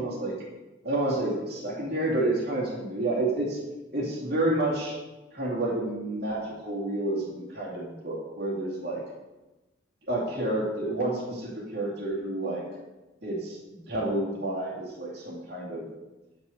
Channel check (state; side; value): normal; both; correlation 0.26